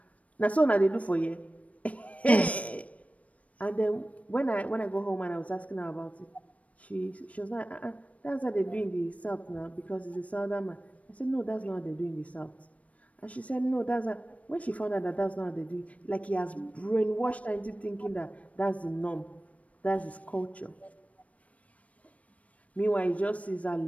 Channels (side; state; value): right; late; 0.066 ms